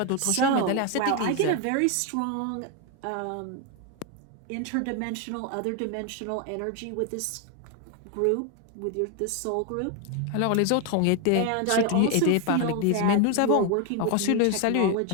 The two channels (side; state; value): both; different; correlation 0.01